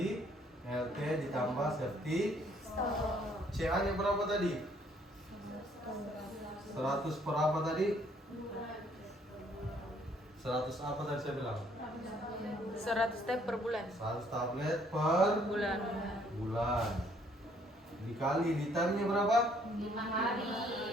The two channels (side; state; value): both; normal; correlation 0.65